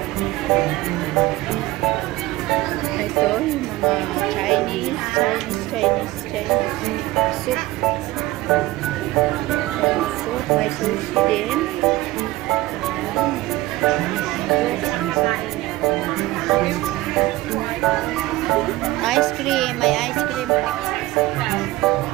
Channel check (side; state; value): left; quieter; 18.1 dB